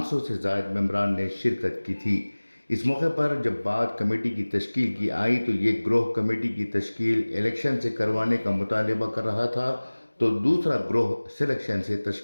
से ज़ायद मेंबरान ने शिरकत की थी। इस मौके पर जब बात कमेटी की तश्कील की आई तो ये ग्रोह कमेटी की तश्कील इलेक्शन से करवाने का मुतालबा कर रहा था, तो दूसरा ग्रोह सिलेक्शन से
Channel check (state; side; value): inverted; both; correlation -1.00